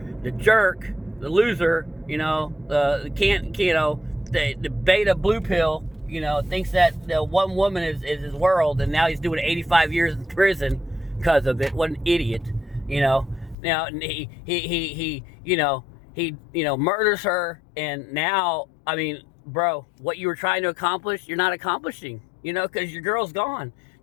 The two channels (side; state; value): right; drops out; at 13.6 s